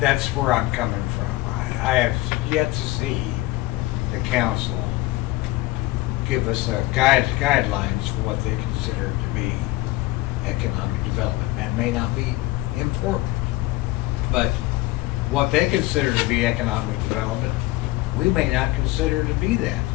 where I'm coming from. I have yet to see the council give us guidelines for what they consider to be economic development. That may not be important, but what they consider to be economic development, we may not consider to be that.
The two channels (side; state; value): right; quieter; 18.9 dB